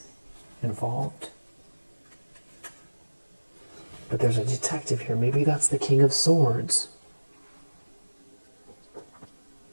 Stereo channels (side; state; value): both; inverted; correlation -1.00